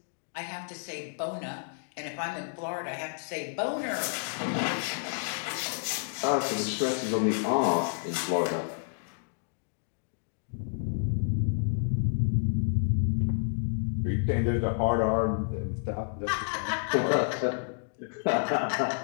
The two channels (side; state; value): right; silent; digital silence